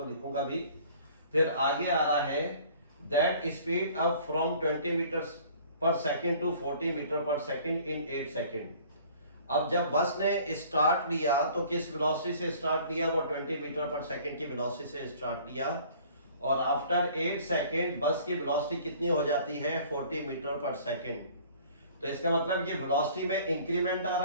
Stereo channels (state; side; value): inverted; both; correlation -0.52